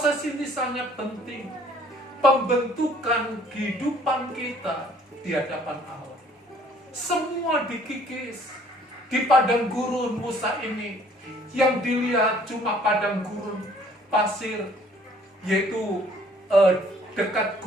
ini sangat penting. Pembentukan kehidupan kita di hadapan Allah. Semua dikikis di padang gurun Musa ini. Yang dilihat cuma padang gurun pasir, yaitu dekat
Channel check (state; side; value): normal; both; correlation 0.58